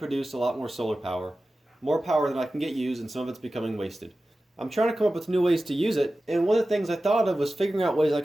a lot more solar power. More power than I can get used, and some of it's becoming wasted. I'm trying to come up with new ways to use it, and one of the things I thought of was figuring out ways I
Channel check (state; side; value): normal; both; correlation 0.95